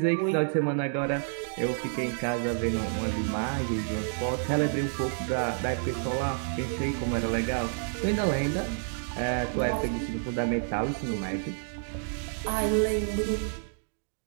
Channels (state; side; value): silent; left; digital silence